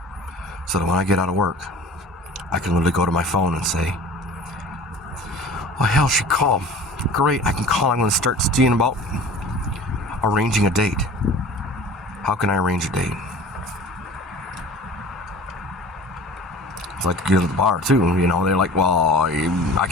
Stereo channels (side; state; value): both; normal; correlation 0.42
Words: so that when I get out of work, I can literally go to my phone and say, oh hell, she called. Great, I can call. I'm going to start seeing about arranging a date. How can I arrange a date? It's like to get to the bar too, you know, they're like, well, I